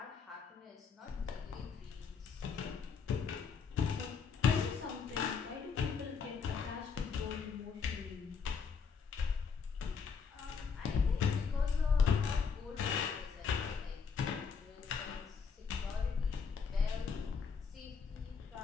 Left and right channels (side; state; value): right; quieter; 5.9 dB